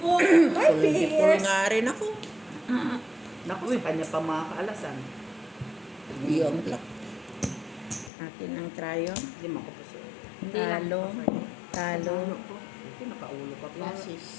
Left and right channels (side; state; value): right; drops out; at 8.1 s